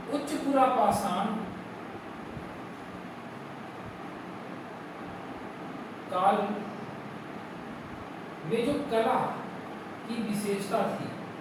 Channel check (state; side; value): identical; both; correlation 1.00